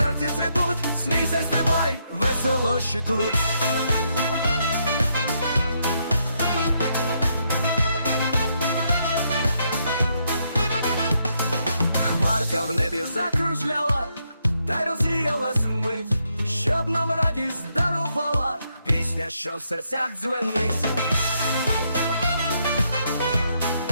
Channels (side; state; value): both; inverted; correlation -0.77